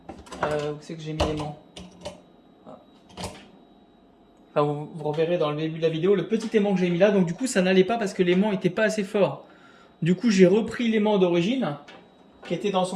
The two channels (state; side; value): identical; both; correlation 1.00